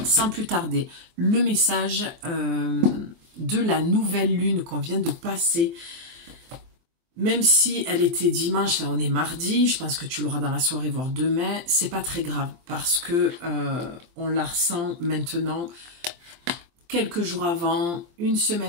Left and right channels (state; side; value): late; left; 23 ms